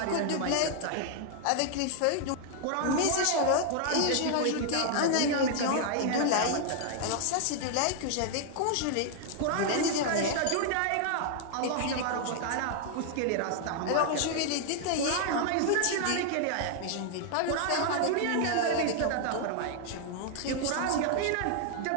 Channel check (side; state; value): both; different; correlation 0.00